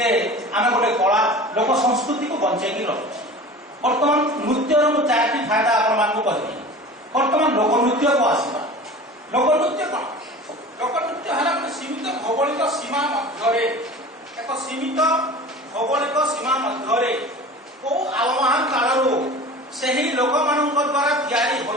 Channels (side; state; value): both; normal; correlation 0.38